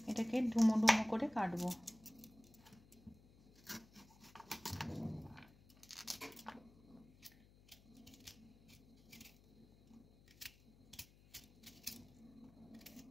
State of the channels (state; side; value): noise; left; hum, 25 dB below the sound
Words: এটাকে ডুমো ডুমো করে কাটবো।